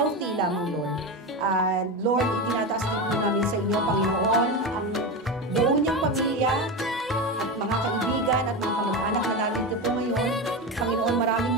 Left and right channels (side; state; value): both; normal; correlation 0.19